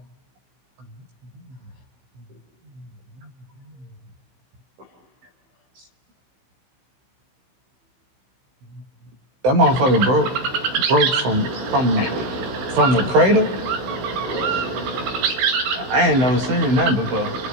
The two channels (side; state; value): left; late; 16 ms